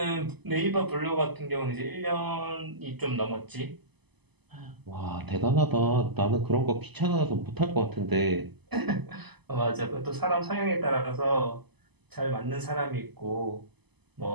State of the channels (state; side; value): late; left; 0.99 ms